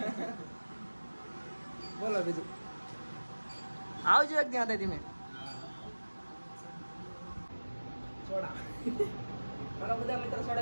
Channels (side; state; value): both; inverted; correlation -1.00